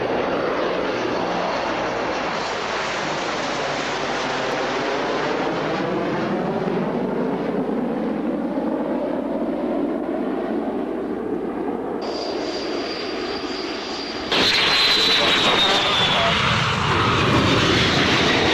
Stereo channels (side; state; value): both; identical; correlation 1.00